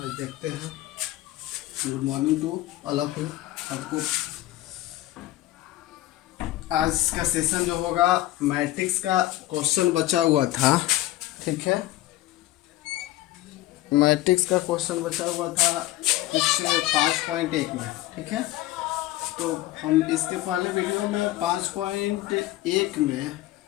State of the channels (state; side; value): quieter; right; 15.9 dB